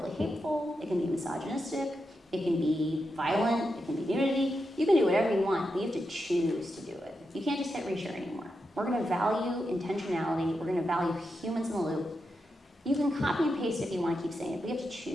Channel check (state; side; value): normal; both; correlation 0.87